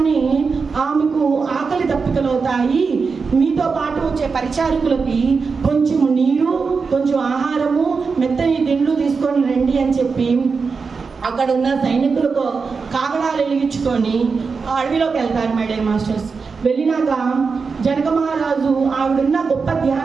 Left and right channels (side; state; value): left; quieter; 5.0 dB